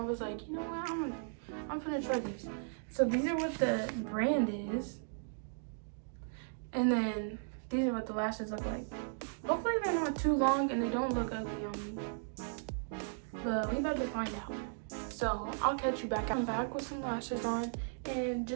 was like, you know what, I'm gonna try these. So these are what the brand is, and then these are what the lashes look like. Hopefully they're not too long and they don't look ugly on me, but we about to find out. So I'll catch you back. I'm back with some lashes on, and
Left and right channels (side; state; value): left; silent; digital silence